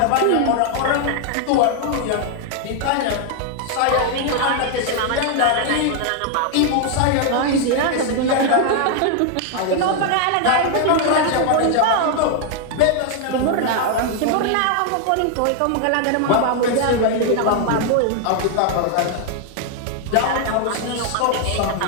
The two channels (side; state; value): both; different; correlation 0.00